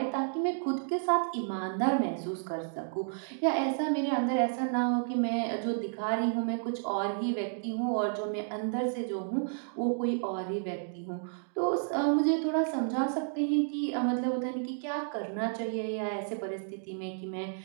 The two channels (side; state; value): left; silent; digital silence